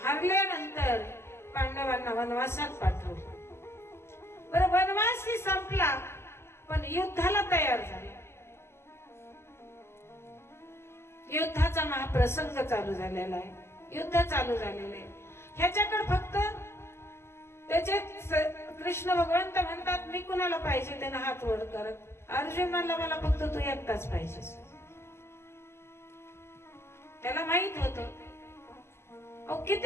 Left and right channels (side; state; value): right; late; 0.12 ms